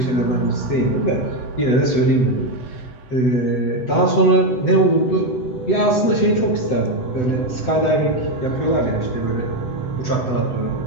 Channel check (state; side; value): late; right; 7.9 ms